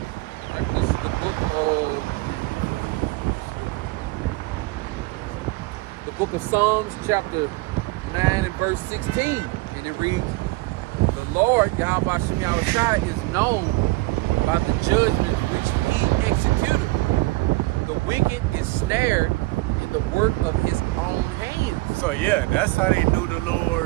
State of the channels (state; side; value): quieter; left; 22.0 dB